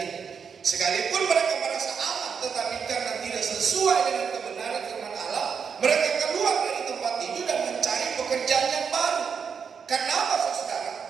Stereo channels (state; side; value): quieter; left; 6.5 dB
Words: Sekalipun mereka merasa aman, tetapi karena tidak sesuai dengan kebenaran firman Allah, mereka keluar dari tempat itu dan mencari pekerjaan yang baru. Karena apa, saudara?